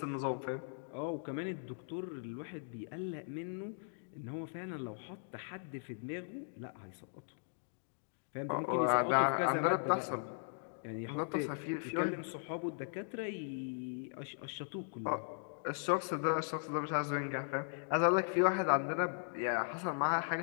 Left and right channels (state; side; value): silent; right; digital silence